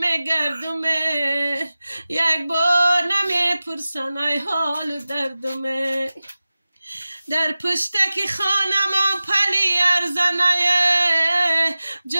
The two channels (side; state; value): both; inverted; correlation -0.96